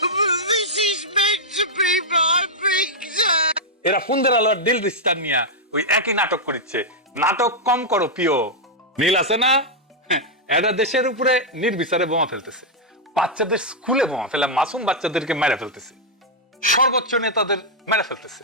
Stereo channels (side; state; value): both; normal; correlation -0.04